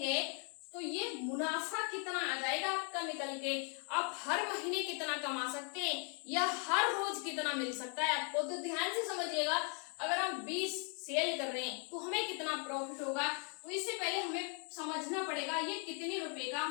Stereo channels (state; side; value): quieter; right; 38.9 dB